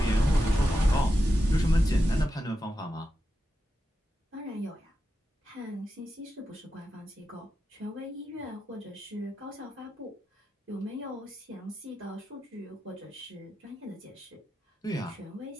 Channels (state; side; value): normal; both; correlation 0.89